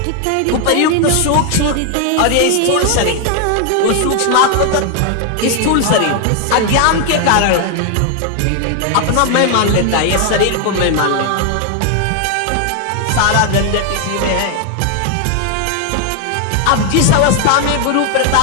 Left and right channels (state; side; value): different; both; correlation 0.01